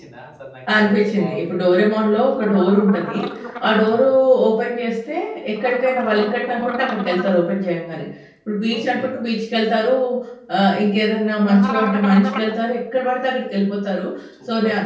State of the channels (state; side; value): identical; both; correlation 1.00